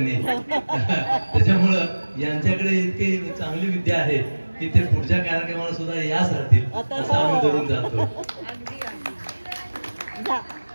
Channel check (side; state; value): both; inverted; correlation -1.00